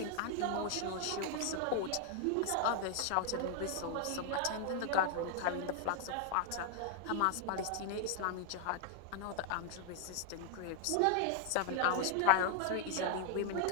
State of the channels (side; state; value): both; different; correlation 0.00